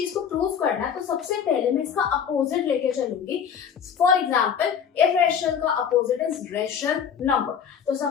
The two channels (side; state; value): right; quieter; 7.7 dB